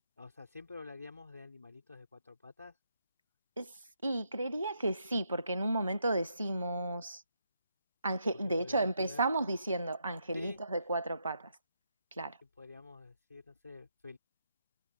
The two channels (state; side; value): inverted; both; correlation -0.78